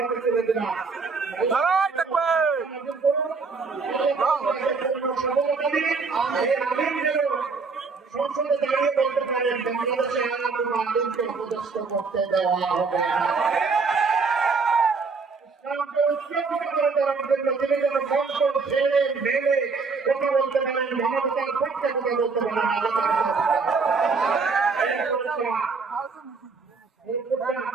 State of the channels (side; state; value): left; quieter; 4.6 dB